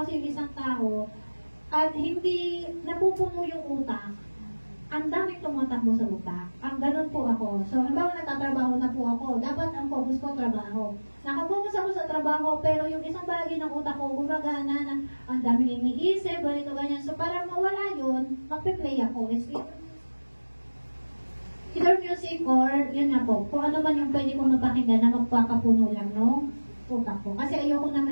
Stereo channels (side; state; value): both; inverted; correlation -1.00